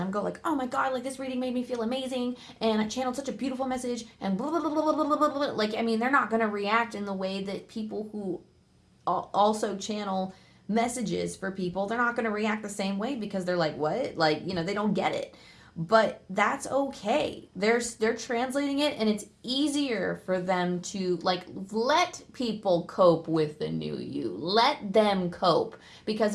I'm go like, oh my god, like this reading made me feel amazing and I channeled such a beautiful message and blah blah blah blah blah blah blah, blah. Like, I mean, they're not gonna react in the way that people who also channel messages for people, they're not gonna react the same way because they're like, what? Like, they don't get it. But that's okay. They're translating it, and it's easier for them to like let people cope with the new you. Let them cope because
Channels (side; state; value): both; identical; correlation 1.00